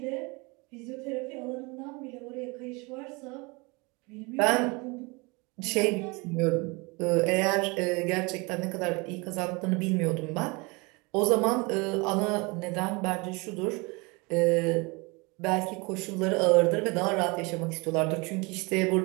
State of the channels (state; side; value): quieter; left; 27.3 dB